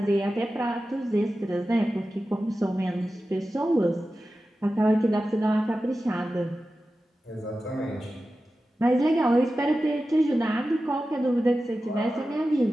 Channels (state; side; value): normal; both; correlation 0.93